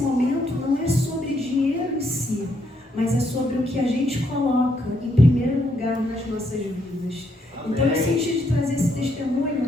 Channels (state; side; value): normal; both; correlation 0.75